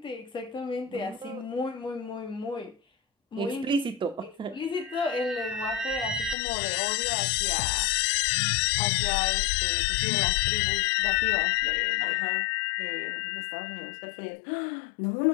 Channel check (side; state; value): right; drops out; at 6.4 s